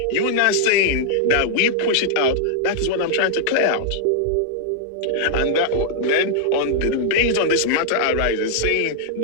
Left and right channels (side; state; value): both; different; correlation -0.01